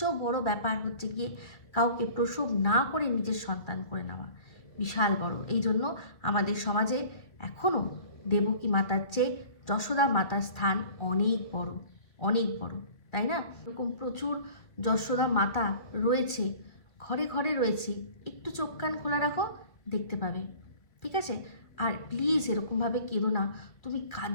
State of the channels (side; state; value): right; late; 2.3 ms